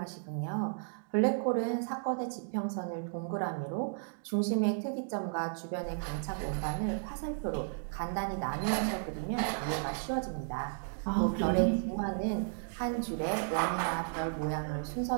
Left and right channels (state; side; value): silent; left; digital silence